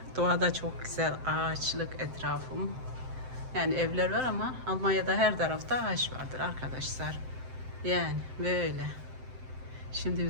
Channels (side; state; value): left; late; 7.7 ms